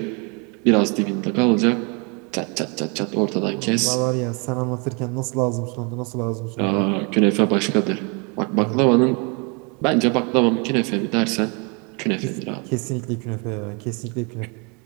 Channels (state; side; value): quieter; left; 33.0 dB